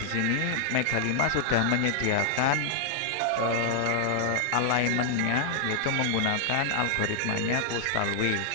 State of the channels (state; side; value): different; both; correlation 0.00